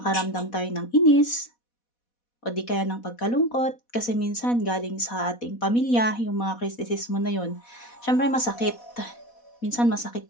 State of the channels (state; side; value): late; right; 4.1 ms